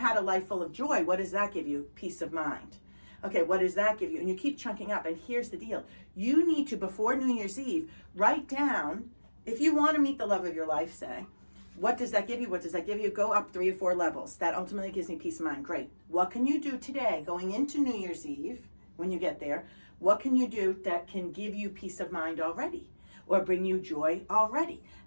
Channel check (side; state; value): both; inverted; correlation -1.00